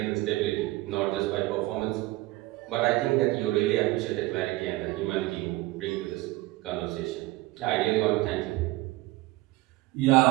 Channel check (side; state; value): left; quieter; 19.4 dB